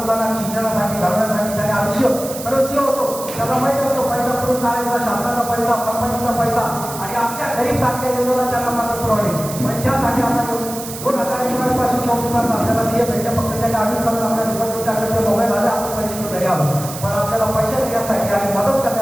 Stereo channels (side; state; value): right; noise; hiss, 10 dB below the sound